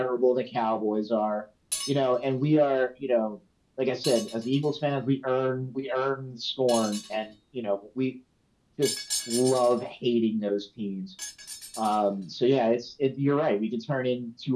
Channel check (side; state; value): both; identical; correlation 1.00